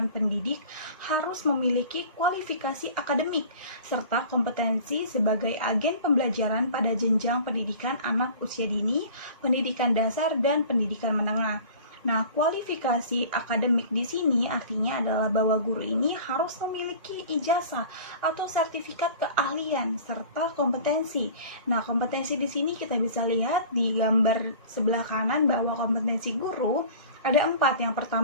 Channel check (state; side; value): inverted; both; correlation -0.43